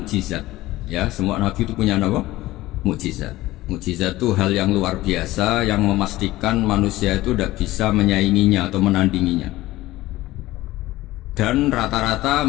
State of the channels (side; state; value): right; quieter; 17.3 dB